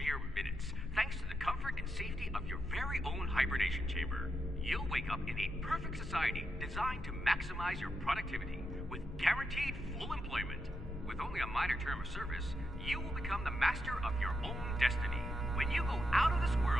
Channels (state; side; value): normal; both; correlation 0.84